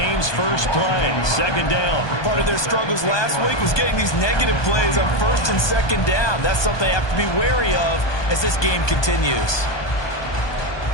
first play. Second down. Part of their struggles last week was getting these negative plays on first and second down. That's something they have to be wary of as this game continues.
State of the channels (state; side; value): late; right; 1.2 ms